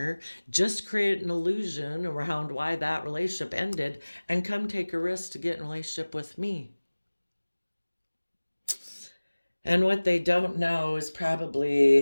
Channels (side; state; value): both; inverted; correlation -1.00